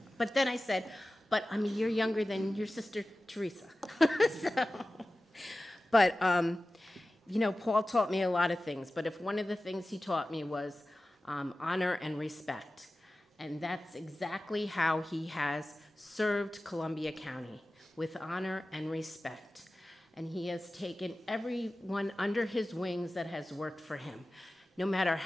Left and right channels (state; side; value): normal; both; correlation 0.96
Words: But then I said, "But I'm a year younger than your sister, Teresa." But, you know, Paul taught me a lot of things, but if one of the things he taught me was honor and respect. And that's exactly how he has served Columbia County, with honor and respect. And he has taken everyone under his wings that has worked for him. No matter